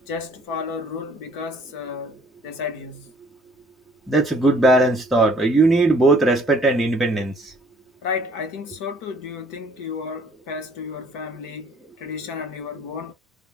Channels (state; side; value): normal; both; correlation 0.57